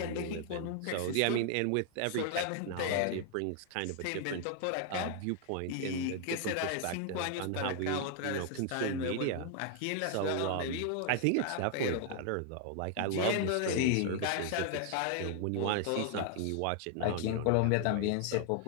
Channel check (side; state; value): both; different; correlation 0.00